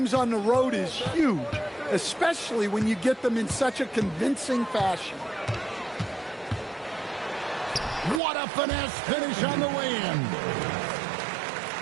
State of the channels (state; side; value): drops out; left; at 8.2 s